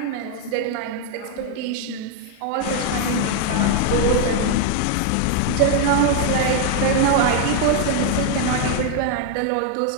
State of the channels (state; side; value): different; both; correlation 0.00